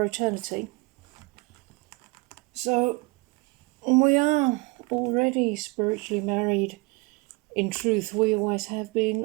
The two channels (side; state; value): left; quieter; 26.3 dB